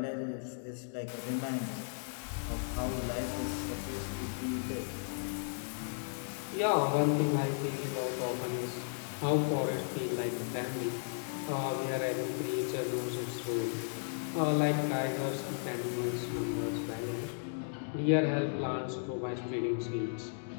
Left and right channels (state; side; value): silent; right; digital silence